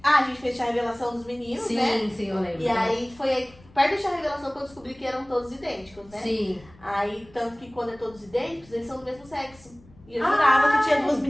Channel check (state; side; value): noise; left; rumble, 25 dB below the sound